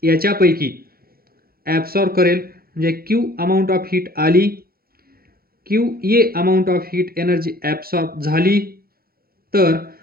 याच्यापैकी ॲब्सॉर्ब करेल, म्हणजे क्यू अमाऊंट ऑफ हीट आली, Q A amount of heat energy absorb झाली. तर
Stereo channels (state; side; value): late; left; 0.44 ms